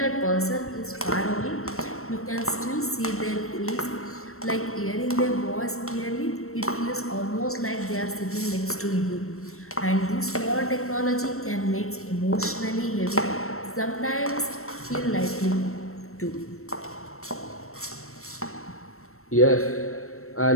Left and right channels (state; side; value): late; right; 0.63 ms